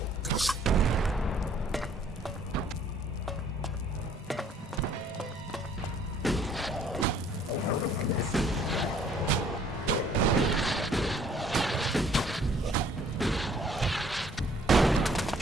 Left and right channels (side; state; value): both; normal; correlation 0.60